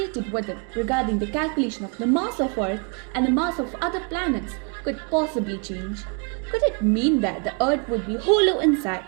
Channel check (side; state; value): left; quieter; 35.6 dB